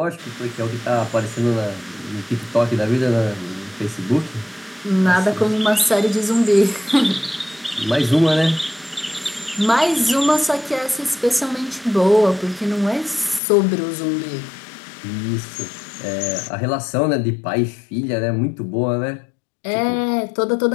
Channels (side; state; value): right; drops out; at 13.4 s